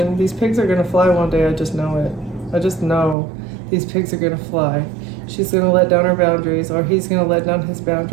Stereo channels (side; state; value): left; drops out; at 3.2 s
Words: These pigs are going to fly one day. I just know it. I just know these pigs are going to fly. She's going to let down her boundaries, or he's going to let down his